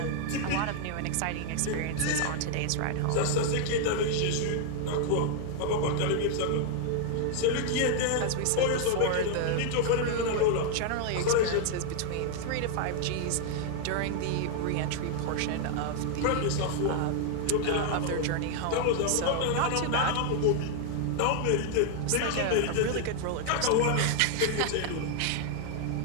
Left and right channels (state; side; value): different; both; correlation 0.00